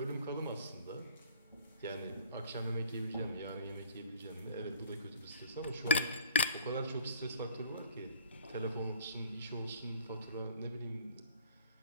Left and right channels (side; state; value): both; inverted; correlation -0.54